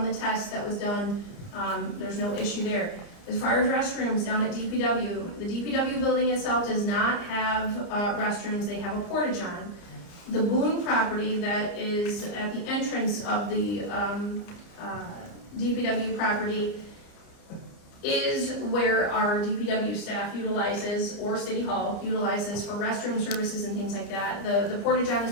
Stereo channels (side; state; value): right; late; 29 ms